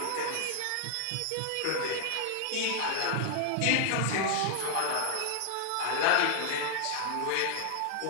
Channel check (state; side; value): different; both; correlation -0.01